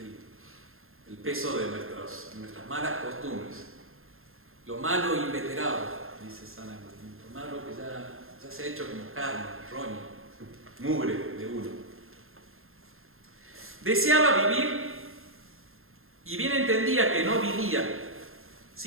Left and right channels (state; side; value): late; left; 0.61 ms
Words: el peso de nuestras malas costumbres. Lo malo inveterado, dice San Agustín. Lo malo que ya se ha hecho como carne, roña, mugre de uno. Deseaba vivir y bien entendía que no vivía,